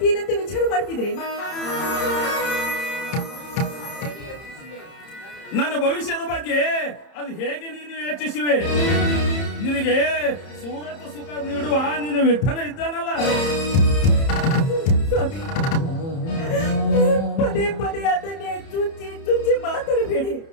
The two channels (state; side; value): late; right; 30 ms